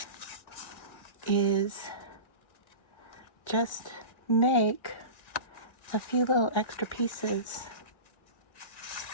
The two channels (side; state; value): right; late; 1.9 ms